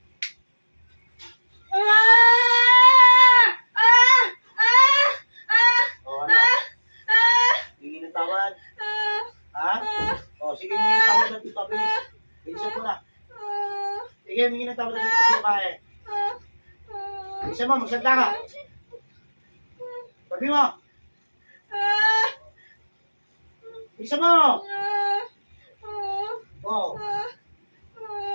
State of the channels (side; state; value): both; inverted; correlation -1.00